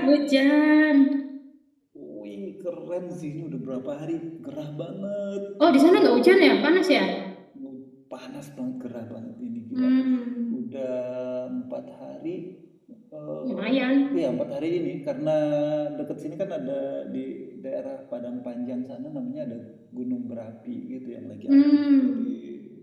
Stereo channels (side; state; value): both; identical; correlation 1.00